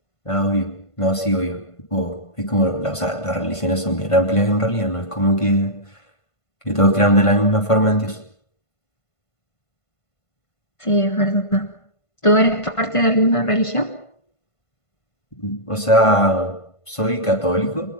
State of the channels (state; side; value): late; right; 1.5 ms